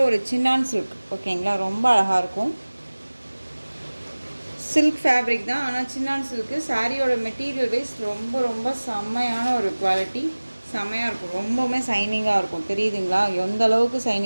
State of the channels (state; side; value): inverted; both; correlation -1.00